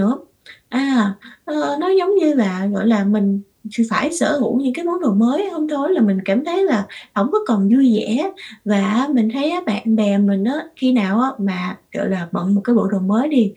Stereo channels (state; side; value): identical; both; correlation 1.00